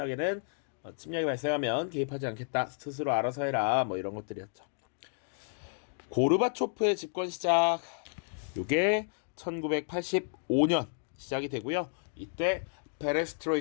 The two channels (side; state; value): right; silent; digital silence